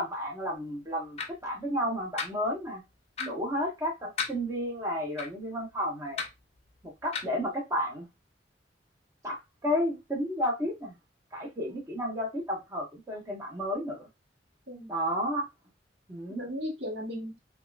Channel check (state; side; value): normal; both; correlation 0.16